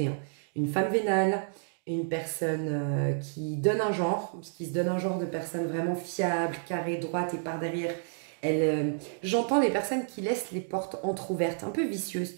Hein. Une femme vénale, une personne qui donne un genre, qui se donne un genre de personne vraiment fiable, carrée, droite et par derrière. J'entends des personnes qui laissent les portes entrouvertes, un peu vicieuses,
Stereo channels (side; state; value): left; silent; digital silence